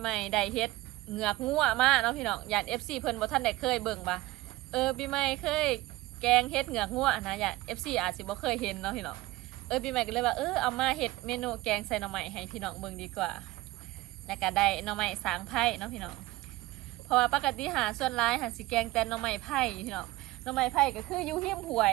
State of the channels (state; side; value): quieter; left; 18.9 dB